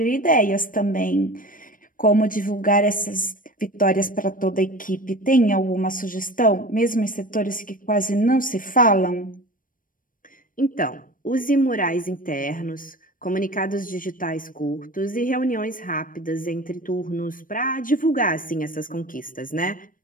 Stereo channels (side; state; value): right; late; 0.40 ms